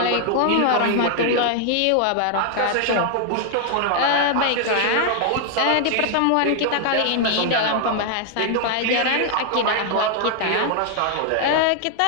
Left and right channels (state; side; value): different; both; correlation 0.00